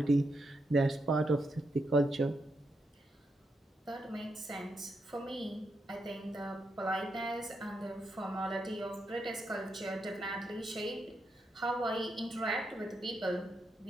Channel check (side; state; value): both; normal; correlation 0.82